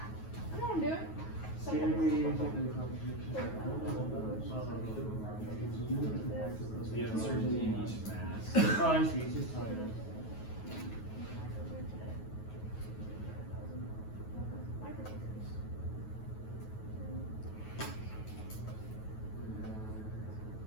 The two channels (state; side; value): late; right; 9.3 ms